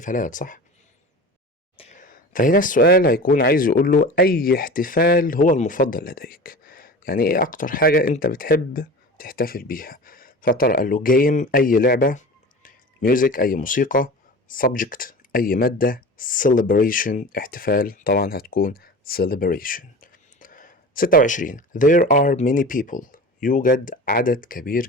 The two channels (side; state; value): both; normal; correlation 0.35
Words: صح؟ فهنا السؤال هيكون عايز يقول له أي احتفال هو المفضل لديك. يعني ايه أكتر حاجة أنت بتحب تحتفل بيها؟ فترى قال له game أي لعبة. music أي موسيقى. subject أي مادة. celebration احتفال طبعا هتكون celebration. 26 there are many people. يوجد عدد كبير